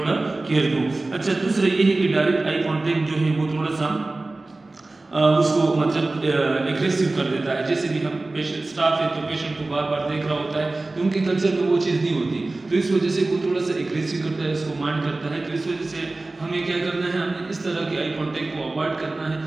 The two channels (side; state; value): left; quieter; 3.1 dB